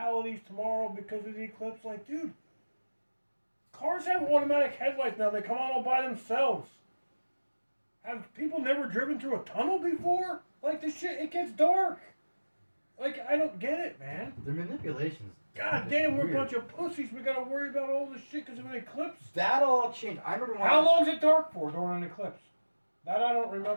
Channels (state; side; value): inverted; both; correlation -1.00